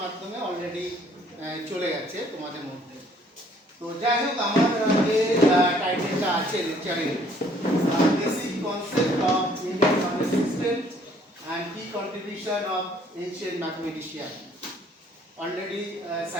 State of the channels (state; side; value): normal; both; correlation 0.61